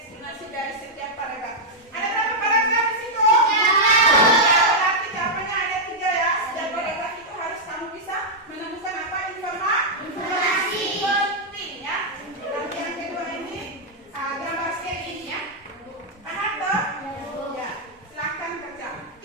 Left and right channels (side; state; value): both; normal; correlation -0.04